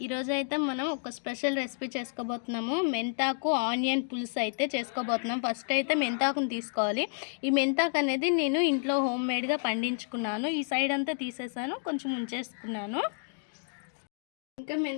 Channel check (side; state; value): right; silent; digital silence